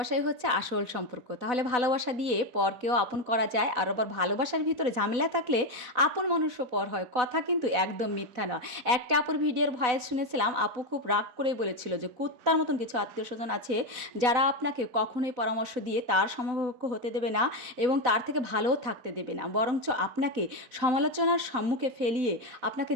হচ্ছে আসল সম্পর্ক। তাহলে ভালোবাসা দিয়ে পরকেও আপন করা যায়। আর আবার ভালোবাসার ভিতরে ঝামেলা থাকলে আপন মানুষও পর হয়। কথা কিন্তু একদম মিথ্যা নয়। একটা আপুর ভিডিওর ভয়েস শুনেছিলাম, আপু খুব রাগ করেই বলেছিল যে, কুত্তার মতন কিছু আত্মীয়স্বজন আছে, যারা আপনাকে কখনোই পরামর্শ দিয়ে তার সমকক্ষ হতে দেবে না এবং তার থেকে ভালোও থাকতে দেবে না। বরঞ্চ আপনাকে সমালোচনার সম্মুখে ফেলিয়ে আপনাকে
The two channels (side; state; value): left; late; 4.0 ms